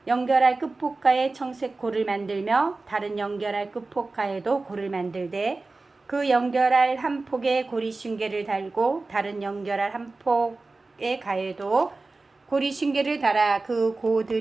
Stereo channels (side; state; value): left; quieter; 3.5 dB